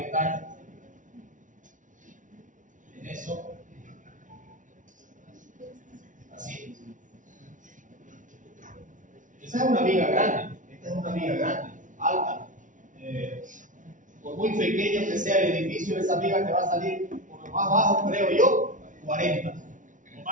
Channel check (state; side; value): late; left; 0.37 ms